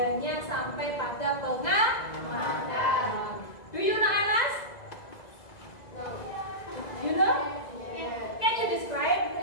sampai pada pengamatan. Do you know Anas? You know? Can you describe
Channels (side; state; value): right; late; 2.0 ms